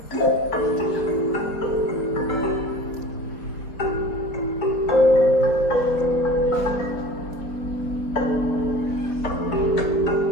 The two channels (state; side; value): late; right; 4.2 ms